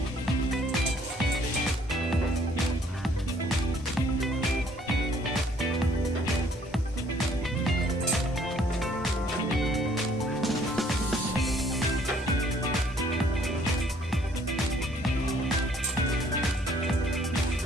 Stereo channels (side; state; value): both; normal; correlation 0.62